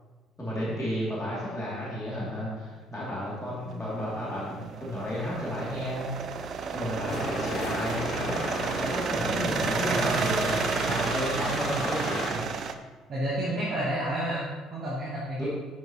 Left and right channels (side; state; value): both; normal; correlation 0.64